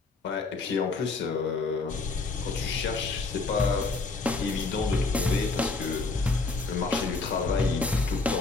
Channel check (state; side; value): quieter; right; 3.8 dB